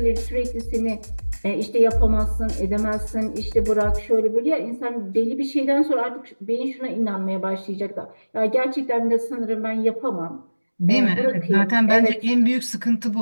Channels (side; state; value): both; inverted; correlation -1.00